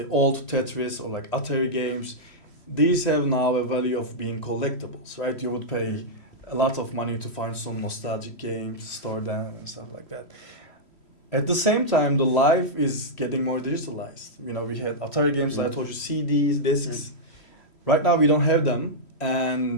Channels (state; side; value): late; right; 3.1 ms